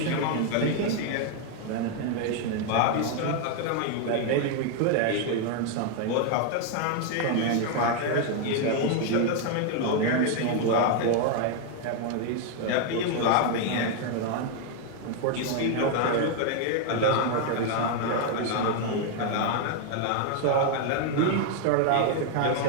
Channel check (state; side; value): different; both; correlation 0.00